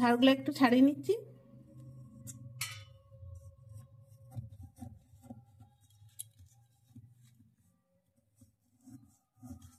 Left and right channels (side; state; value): both; identical; correlation 1.00